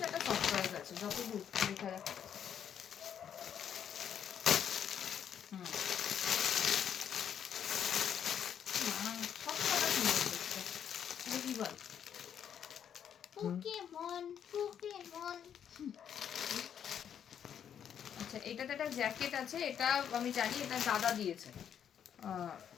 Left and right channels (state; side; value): quieter; right; 8.8 dB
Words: একটা সফটওয়্যার আছে, যতদূর দেখা যাচ্ছে। সব কথা সুন্দর দেখতে, দেখি বল। Pokemon Pokemon. আচ্ছা, এটাতে একটা জ্যাকেট আছে, এটা আমি জানি, এটা দাদা দিয়েছে,